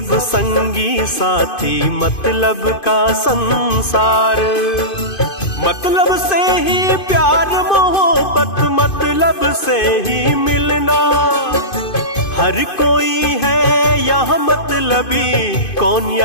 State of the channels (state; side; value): late; right; 2.5 ms